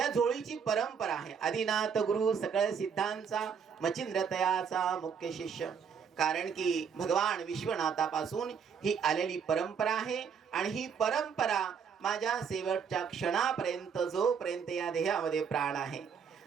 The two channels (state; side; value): quieter; left; 6.7 dB